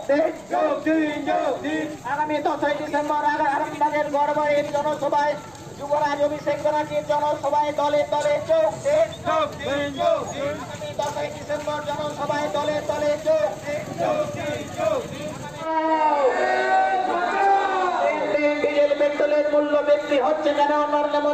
দিন। আগামী 10ই ডিসেম্বর আরামবাগের গড়বাড়ির জনসভায় যুবরাজ অভিষেক ব্যানার্জির জনসভায় দলে দলে যোগ দিন। আগামী 10ই ডিসেম্বর জনসভায় দলে দলে যোগ দিন। ডিজেল পেট্রোলের মূল্য বৃদ্ধি হচ্ছে কেন? নরেন্দ্র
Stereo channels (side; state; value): right; noise; rumble, 27 dB below the sound